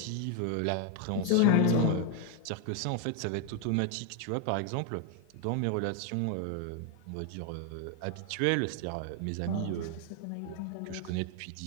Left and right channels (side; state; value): both; different; correlation 0.00